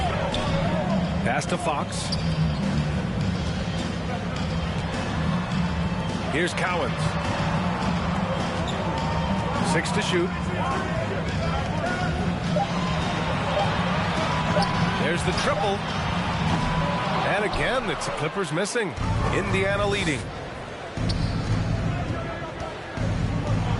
Pass to Fox. Here's Cowens. 6 to shoot. There's the triple. And again, it's the Clippers missing. Indiana leading.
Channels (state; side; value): identical; both; correlation 1.00